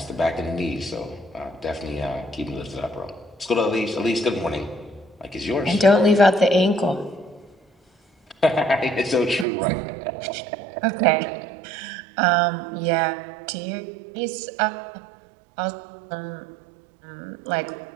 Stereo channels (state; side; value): drops out; left; at 9.5 s